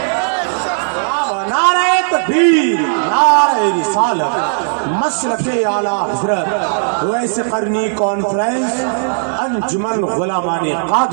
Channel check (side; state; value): left; silent; digital silence